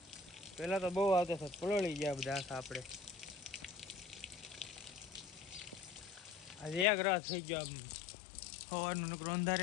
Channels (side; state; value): right; drops out; at 6.9 s